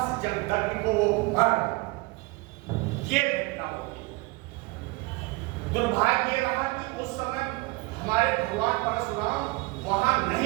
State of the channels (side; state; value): left; quieter; 23.2 dB